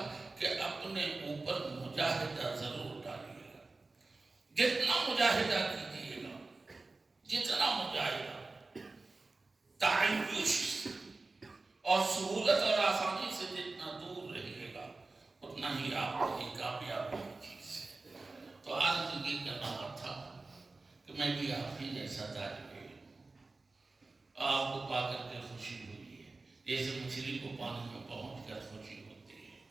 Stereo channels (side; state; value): left; quieter; 3.5 dB